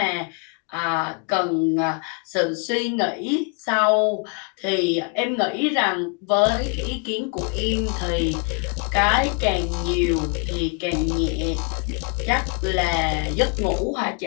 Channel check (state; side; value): quieter; right; 34.6 dB